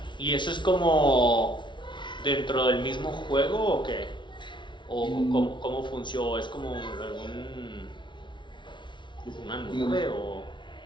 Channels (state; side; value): late; right; 0.23 ms